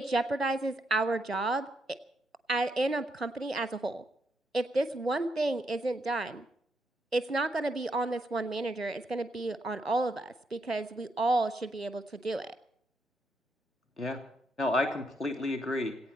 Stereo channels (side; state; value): both; normal; correlation 0.79